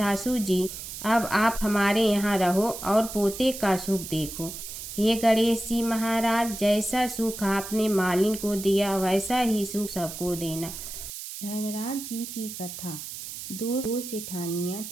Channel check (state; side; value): noise; right; hiss, 9 dB below the sound